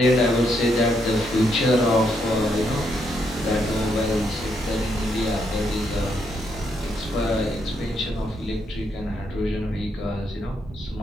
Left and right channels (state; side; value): normal; both; correlation 0.77